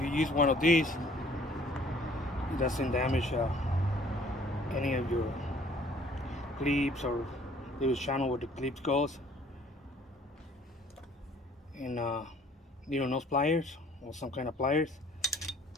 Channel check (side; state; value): both; normal; correlation 0.57